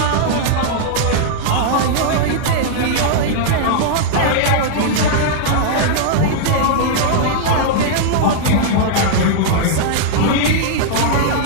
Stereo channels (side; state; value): both; different; correlation -0.01